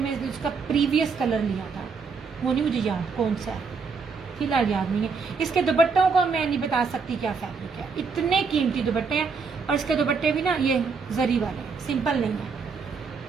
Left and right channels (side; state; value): left; quieter; 5.1 dB